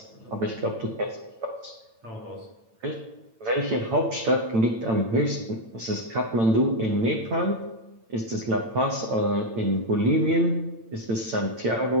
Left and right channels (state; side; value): late; left; 8.9 ms